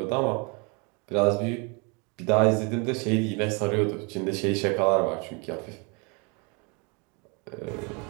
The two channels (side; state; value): left; quieter; 32.2 dB